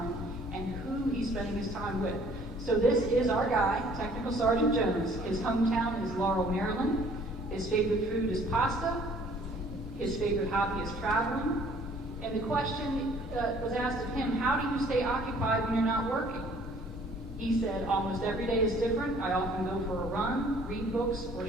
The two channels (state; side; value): normal; both; correlation 0.56